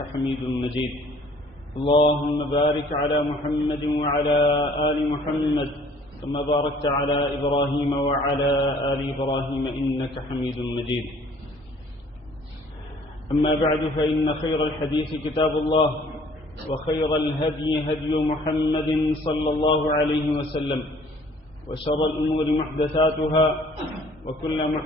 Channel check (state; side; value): normal; both; correlation 0.56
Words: حميد مجيد اللهم بارك على محمد وعلى آل محمد كما باركت على إبراهيم وعلى آل إبراهيم إنك حميد مجيد أما بعد فإن خير الحديث كتاب الله وخير الهدي هدي محمد صلى الله عليه وسلم وشر الأمور محدثاتها وكل